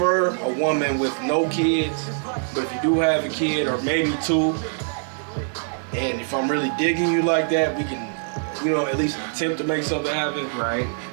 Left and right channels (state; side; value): silent; left; 63 dB below the other